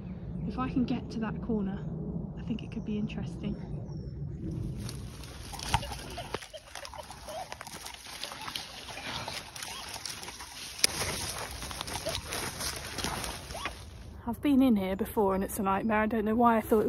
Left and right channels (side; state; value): both; identical; correlation 1.00